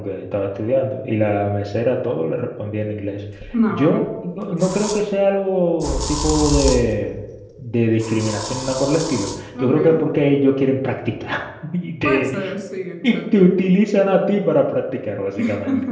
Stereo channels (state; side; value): identical; both; correlation 1.00